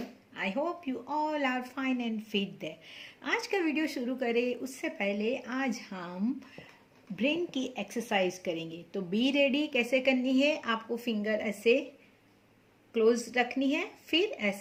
I hope you all are fine and fit there. आज का video शुरू करें उससे पहले आज हम ब्रेन की एक्सरसाइज करेंगे। तो बी रेडी कैसे करनी है, आपको फिंगर ऐसे क्लोज रखनी है, फिर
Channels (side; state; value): both; identical; correlation 1.00